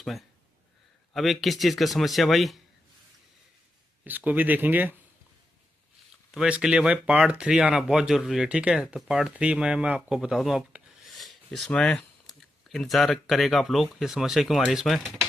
अब ये किस चीज़ का समस्या भाई, इसको भी देखेंगे। तो भाई इसके लिए भाई पार्ट 3 आना बहुत ज़रूरी है, ठीक है। तो पार्ट 3 में मैं आपको बता दूं, आप इसमें इंतज़ार करेगा आप लोग, ये समस्या क्यों आ रही है इसमें।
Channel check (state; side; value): normal; both; correlation 0.87